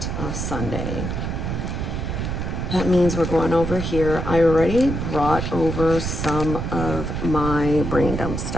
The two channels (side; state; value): right; noise; rumble, 3 dB below the sound